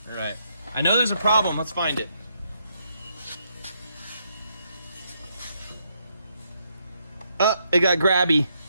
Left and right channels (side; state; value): both; inverted; correlation -0.76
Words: All right. I know there's a problem. Let's find it. It got grabby.